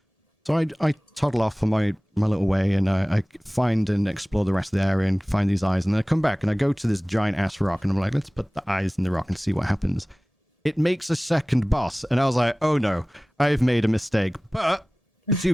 So I toddle off on my little way, and I find and explore the rest of the area and find these eyes, and then I come back and I go to this giant ass rock, and I'm like, let's put the eyes in the rock and see what happens. It makes a second boss, and I was like, oh no, I've made a mistake. But the two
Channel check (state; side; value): normal; both; correlation 0.98